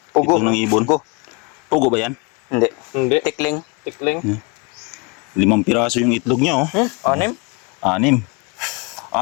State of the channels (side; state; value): right; quieter; 29.7 dB